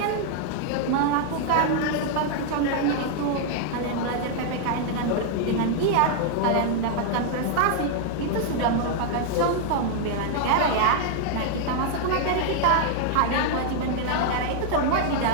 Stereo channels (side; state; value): both; different; correlation 0.00